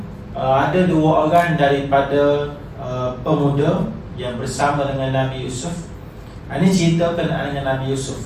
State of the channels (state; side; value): identical; both; correlation 1.00